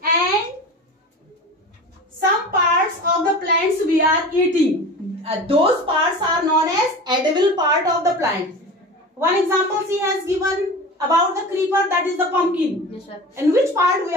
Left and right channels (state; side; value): normal; both; correlation 0.33